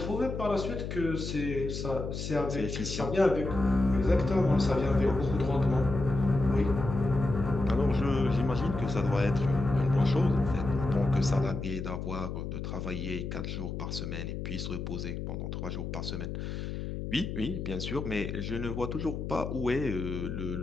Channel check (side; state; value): left; noise; hum, 5 dB below the sound